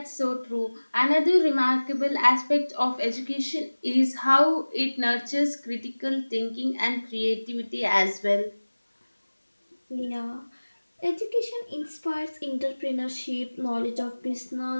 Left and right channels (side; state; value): both; inverted; correlation -1.00